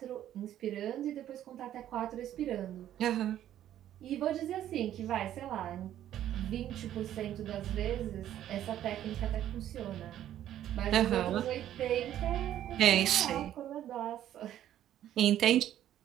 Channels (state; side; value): quieter; left; 11.7 dB